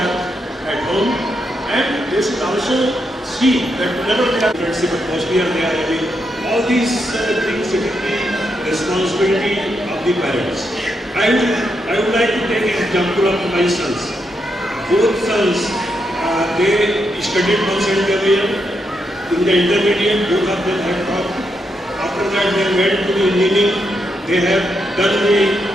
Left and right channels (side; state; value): both; normal; correlation 0.82